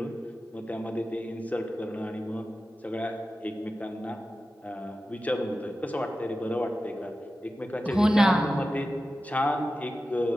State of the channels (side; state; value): both; normal; correlation 0.93